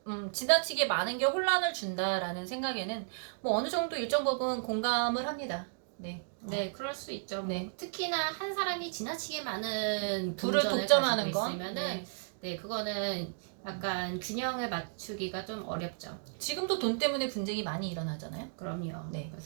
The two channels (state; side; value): silent; left; digital silence